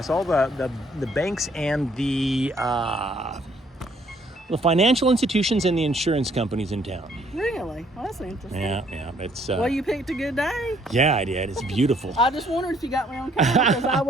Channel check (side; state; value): both; normal; correlation 0.65